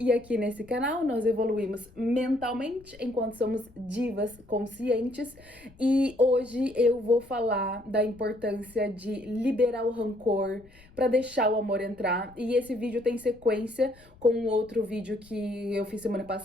aqui nesse canal nós evoluímos mentalmente enquanto somos divas conscientes e hoje eu vou falar da importância de liberar o rancor para deixar o amor entrar. E esse vídeo tem sequência com um outro vídeo que eu fiz semana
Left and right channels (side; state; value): left; noise; rumble, 25 dB below the sound